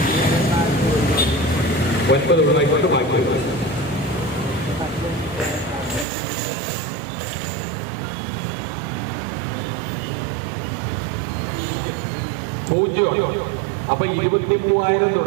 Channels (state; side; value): drops out; left; at 6.1 s